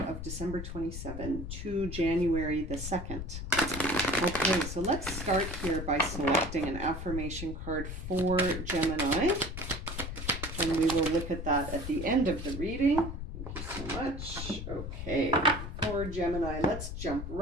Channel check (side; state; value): left; noise; rumble, 7 dB below the sound